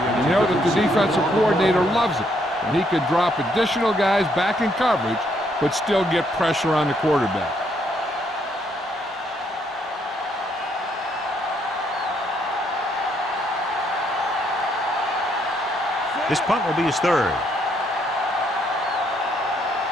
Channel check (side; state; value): both; normal; correlation 0.72